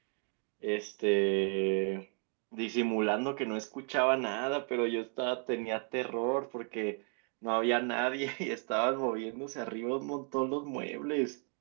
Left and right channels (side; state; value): left; quieter; 38.4 dB